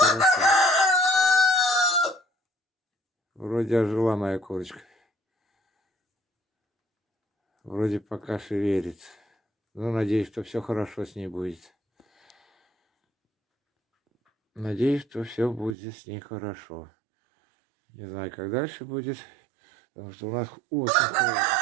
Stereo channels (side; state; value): left; drops out; at 15.8 s